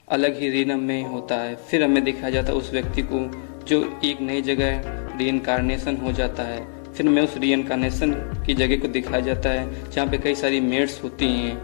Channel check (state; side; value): silent; right; 58 dB below the other